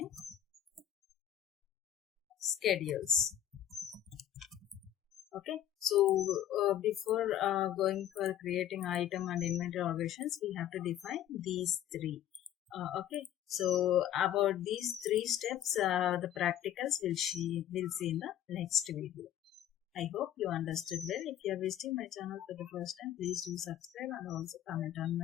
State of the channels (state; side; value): quieter; right; 11.3 dB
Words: schedules. Okay, so before going for creating item and inventory organizations, we have to define these three. Okay, so about these three steps, the practicals we'll see in the next video. I hope you understood well. If you are visiting my channel for the first time, please do subscribe and also comment on